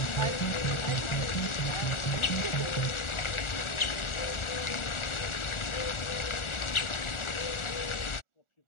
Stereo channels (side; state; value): right; late; 1.4 ms